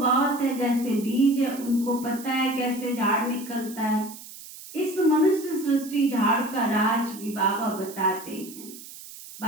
है, जैसे बीज है उनको पता है कैसे झाड़ निकलता है। इस मनुष्य सृष्टि झाड़ का राज भी बाबा बताते हैं।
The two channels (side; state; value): right; noise; hiss, 15 dB below the sound